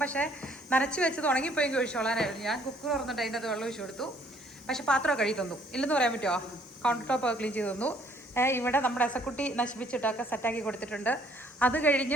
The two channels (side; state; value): both; normal; correlation 0.62